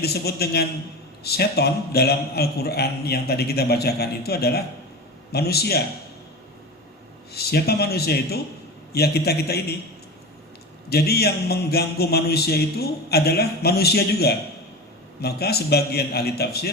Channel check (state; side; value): normal; both; correlation 0.27